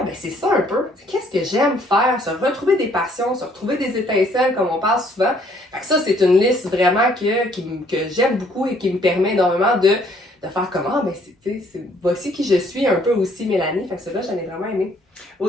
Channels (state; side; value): normal; both; correlation 0.63